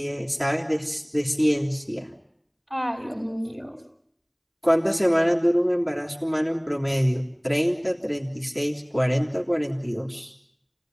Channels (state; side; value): identical; both; correlation 1.00